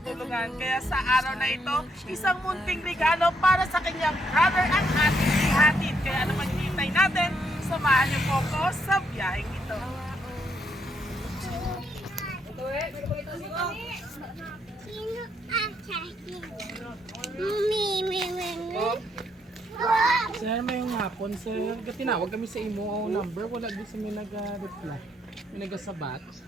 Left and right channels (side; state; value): both; normal; correlation 0.74